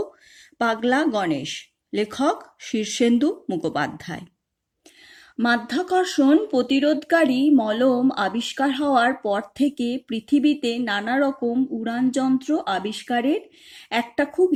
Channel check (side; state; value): both; identical; correlation 1.00